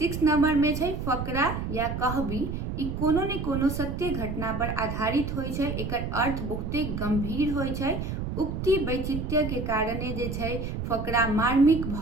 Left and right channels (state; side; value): noise; right; rumble, 4 dB below the sound